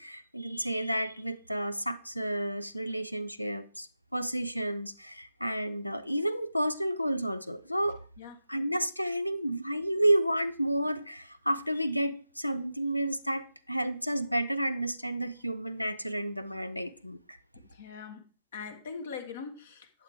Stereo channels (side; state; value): both; inverted; correlation -0.92